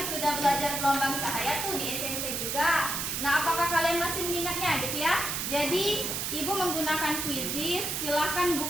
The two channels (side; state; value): right; noise; hiss, 2 dB below the sound